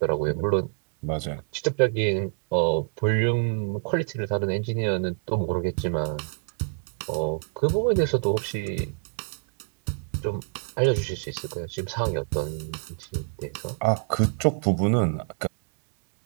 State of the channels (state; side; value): silent; left; 60 dB below the other